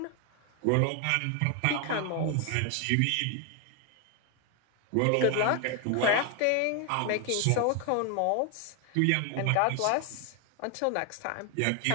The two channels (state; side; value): different; both; correlation 0.01